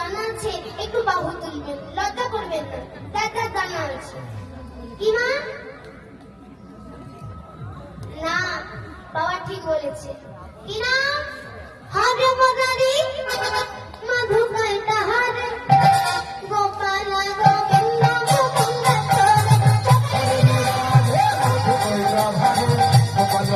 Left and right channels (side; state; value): both; identical; correlation 1.00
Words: আছে একটু বাহু তুলবেন, লজ্জা করবেন না, যার যার জানা আছে। কি মা? না, বাবা ঠিক বলেছে। কি নাম? হরে মদারি মধুকাই তাহারে গোপাল গোবিন্দ মুকুন্দ